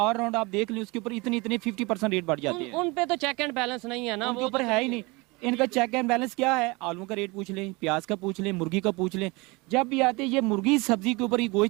राउंड आप देख लें, उसके ऊपर इतने 50% रेट बढ़ जाते हैं। उन पे तो चेक एंड बैलेंस नहीं है ना, उनके वो ऊपर है ही नहीं। इनका चेक एंड बैलेंस क्या है? आलू का रेट पूछ लें, प्याज का पूछ लें, मुर्गी का पूछ लें। जब भी आते हैं ये मुर्गी सब्जी के ऊपर, ये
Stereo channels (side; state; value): left; quieter; 25.4 dB